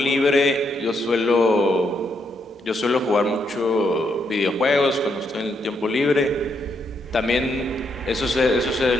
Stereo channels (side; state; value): both; normal; correlation 0.77